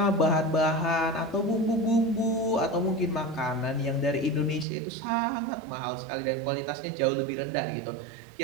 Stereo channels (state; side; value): drops out; left; at 4.7 s